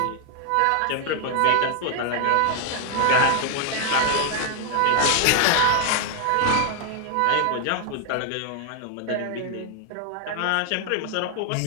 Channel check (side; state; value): both; different; correlation 0.00